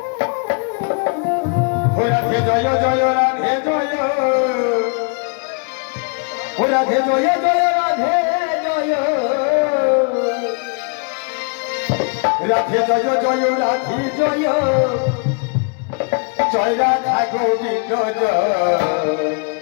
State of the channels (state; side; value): quieter; right; 37.7 dB